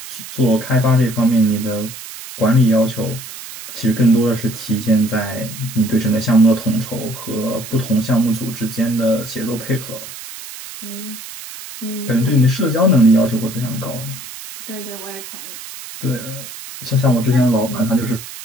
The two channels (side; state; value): right; noise; hiss, 13 dB below the sound